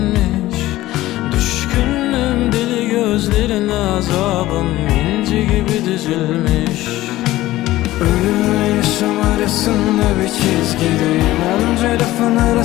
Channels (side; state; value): right; quieter; 16.3 dB